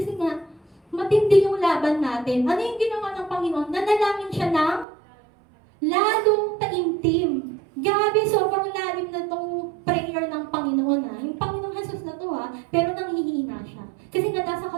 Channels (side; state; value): left; drops out; at 4.9 s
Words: nga, matindi yung laban natin. Ano yung ginawa ng Panginoon? Nanalangin siya ng lalong taimtim. Grabe, sobrang lalim na itong prayer ng Panginoon ha. Yung Panginoong Jesus na to ha, pero nanghihina siya. Kasi nga nasa